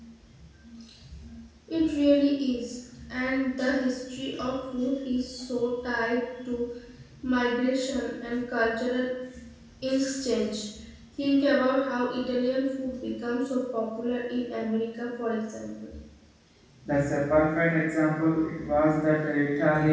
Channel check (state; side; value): identical; both; correlation 1.00